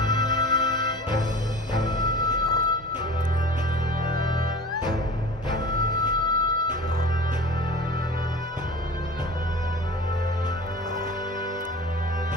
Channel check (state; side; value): normal; both; correlation 0.38